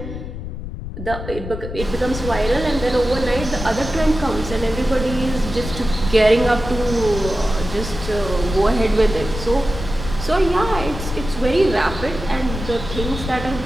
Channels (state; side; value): noise; left; rumble, 8 dB below the sound